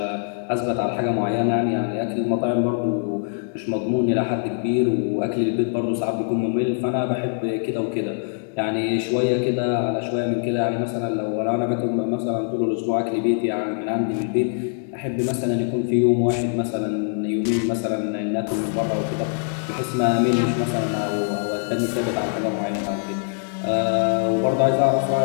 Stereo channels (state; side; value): silent; right; digital silence